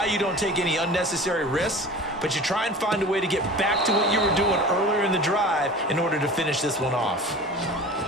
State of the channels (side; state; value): both; normal; correlation 0.38